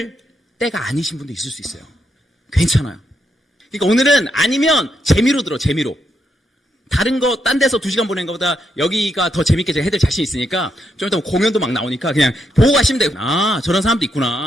때가 아니신 분도 있을 수 있어요. 괜찮아요. 그러니까 오늘은 아니면 재미로 들어, 재미로. 다른 거, 딴 데서 2시간 보낸 것보다 여기가 더 재밌게 제가 해드릴 자신 있으니까 좀 이따 공연도 막 나오니까 그냥 보고 가시면 돼요. 아, 저런 사람도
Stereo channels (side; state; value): both; normal; correlation 0.80